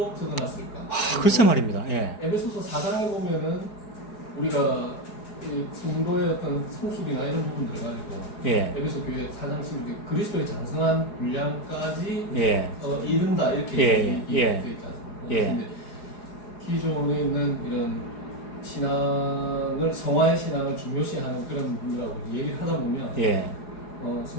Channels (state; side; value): late; right; 4.8 ms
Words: 적어놨을까? 글쎄 말입니다. 예. 에베소서 4장에 보면은 우리가 성도의 어떤 성숙이나 이런 부분들을 가지고, 예. 에베소 교회 4장 11절 그리스도의 장성한 분량까지 예. 이른다 이렇게 예. 되어 있지 않습니까? 예. 근데 기존에 있는 이런 신앙을, 성화의 신앙을 중요시하는 그런 분이라고 얘기를 하다 보면, 예.